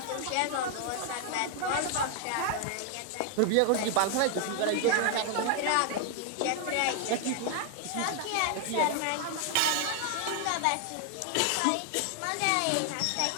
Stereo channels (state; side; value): different; both; correlation 0.00